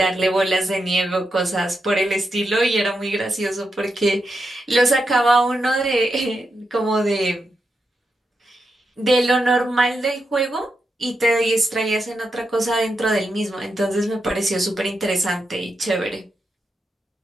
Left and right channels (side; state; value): both; normal; correlation 0.86